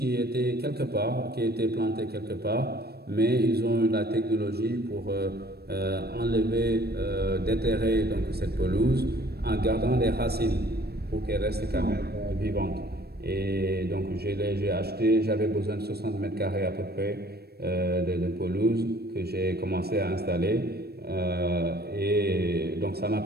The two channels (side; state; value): left; late; 0.47 ms